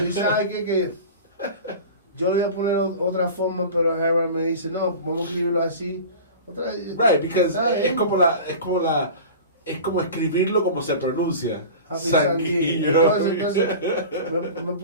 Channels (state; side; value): inverted; both; correlation -0.35